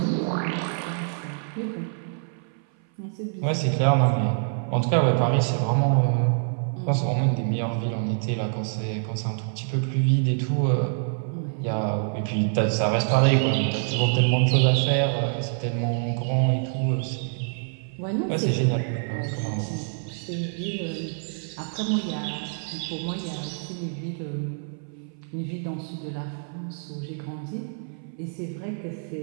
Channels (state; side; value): silent; left; 57 dB below the other